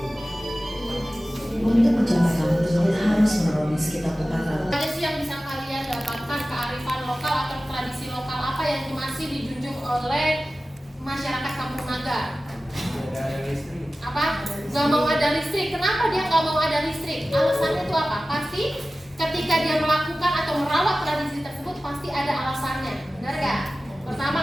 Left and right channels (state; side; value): normal; both; correlation 0.96